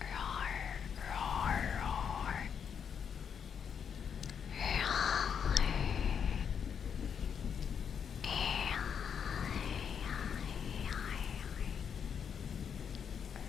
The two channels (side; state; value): right; quieter; 7.4 dB